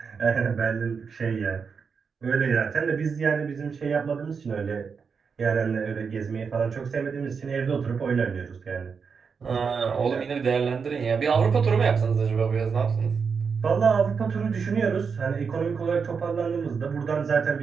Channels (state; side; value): quieter; left; 5.8 dB